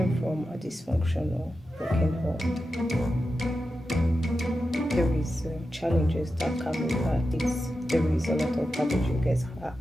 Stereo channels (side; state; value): both; normal; correlation 0.91